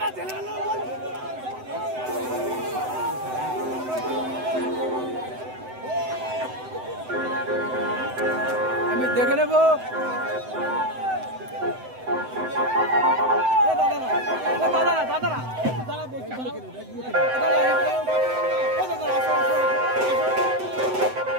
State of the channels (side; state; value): left; late; 7.9 ms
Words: আমি দেখে নেব।